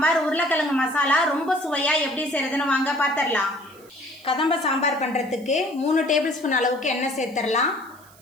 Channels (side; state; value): right; noise; hiss, 26 dB below the sound